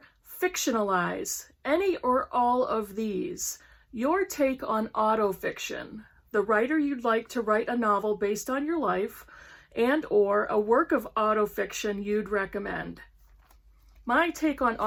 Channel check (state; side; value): identical; both; correlation 1.00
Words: Fictionalize. Any or all of these. Your take on autofiction. The writer you'd like to write a novel based on your life and or a work of autofiction you'd recommend. My take on